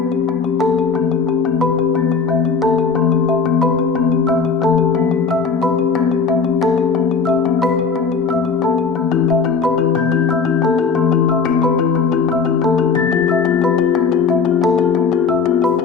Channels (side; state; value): right; quieter; 5.3 dB